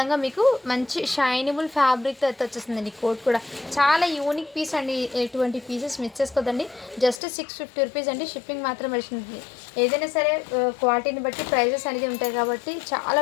మీకు మంచి షైనబుల్ ఫ్యాబ్రిక్తో అయితే వచ్చేస్తుందండి. కోట్ కూడా చాలా యూనిక్ పీస్ అండి. ఎటువంటి పీసెస్ మిస్ చేసుకోదండి. జస్ట్ 650 రూపీస్ అండి. షిప్పింగ్ మాత్రం పడుతుంది. ఏదైనా సరే క్వాలిటీని బట్టి ప్రైజెస్ అనేది ఉంటాయి కాబట్టి చాలా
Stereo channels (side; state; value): right; drops out; at 7.2 s